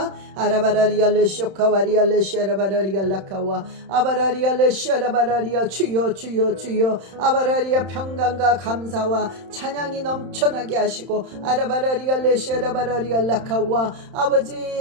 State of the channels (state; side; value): late; left; 31 ms